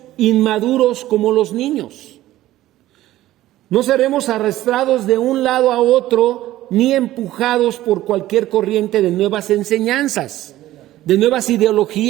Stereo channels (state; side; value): quieter; left; 15.1 dB